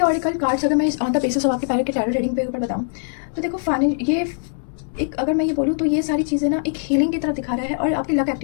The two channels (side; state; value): right; silent; digital silence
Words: कार्ड्स अगर मैं ऑन द बेसिस ऑफ आपके पैर के टैरो रीडिंग पे ऊपर बताऊं तो देखो ये एक, अगर मैं ये बोलूँ तो ये सारी चीज़ें ना एक हीलिंग की तरफ दिखा रहा है और आपकी लक